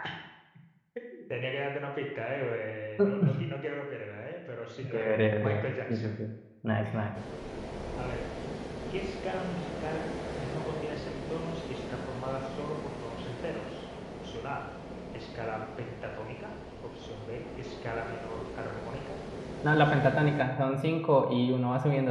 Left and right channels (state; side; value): identical; both; correlation 1.00